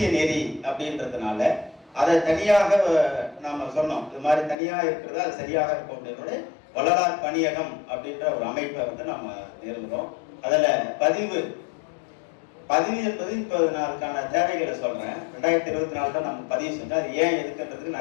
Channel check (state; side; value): drops out; right; at 4.5 s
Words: நெறி அப்படின்றதுனால அதை தனியாக நாம சொன்னோம். இது மாதிரி தனியாக இருக்கிறது அது சரியாக இருக்கும் அப்படின்றத வள்ளலார் பணியகம் அப்படின்ற ஒரு அமைப்பை நம்ம நிறுவனம். அதுல பதிவு என்பது இப்போ நான் அதுக்கான தேவைகளை சொல்றேன். 2024 தான் நம்ம பதிவு செஞ்சோம். அது ஏன் எதுக்குன்றதுக்கு